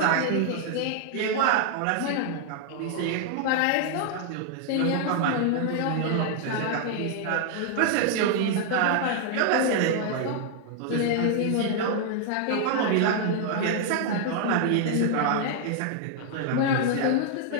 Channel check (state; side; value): different; both; correlation 0.00